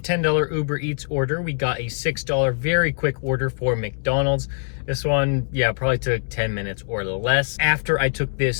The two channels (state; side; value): silent; right; 64 dB below the other